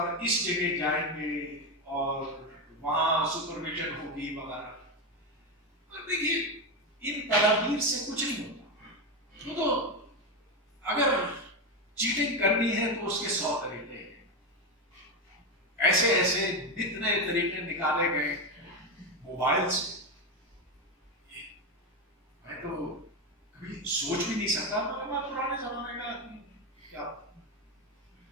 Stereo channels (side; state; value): both; normal; correlation 0.12